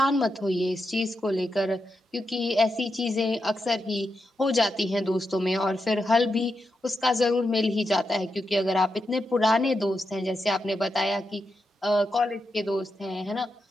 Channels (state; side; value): normal; both; correlation 0.86